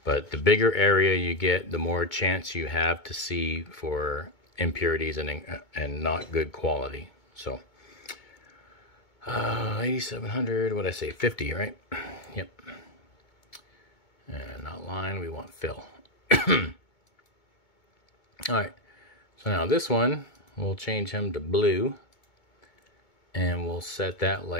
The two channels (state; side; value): late; right; 2.2 ms